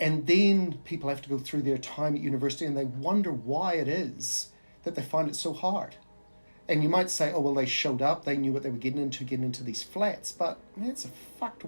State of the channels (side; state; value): both; inverted; correlation -1.00